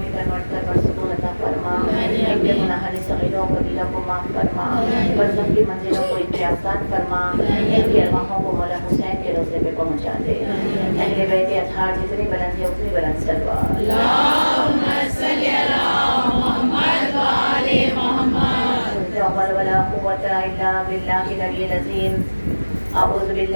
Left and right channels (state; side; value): inverted; both; correlation -1.00